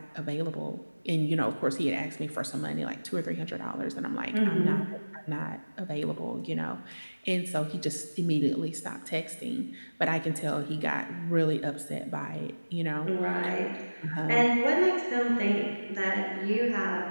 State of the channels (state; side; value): inverted; both; correlation -1.00